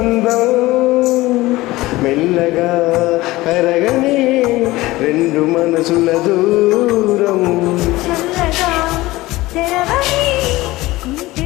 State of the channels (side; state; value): right; quieter; 18.9 dB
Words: మెల్లగా కరగని రెండు మనసుల దూరం చల్లగా తెరవని ఇంటి